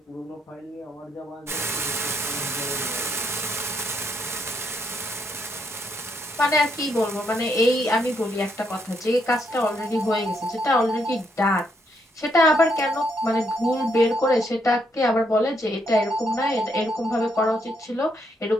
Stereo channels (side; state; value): both; normal; correlation 0.75